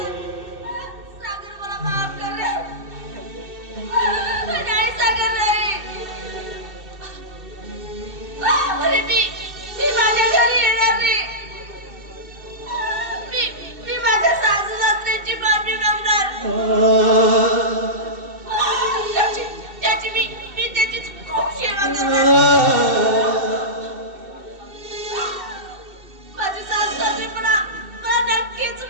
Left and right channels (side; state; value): left; late; 2.7 ms